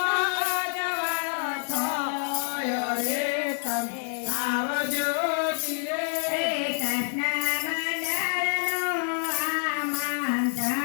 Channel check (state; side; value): silent; right; 60 dB below the other